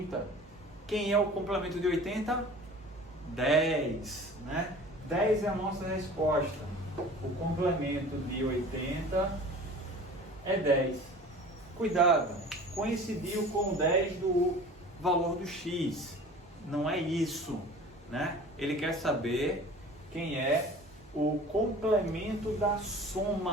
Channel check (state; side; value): normal; both; correlation 0.43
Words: Quem é o complemento de 80? 10, né? 10 é a nossa resposta. O complemento de 80 é 10. Cuidado, coincidiu com 10 do valor do x. Não é isso, né? Ele quer saber quem é o complemento da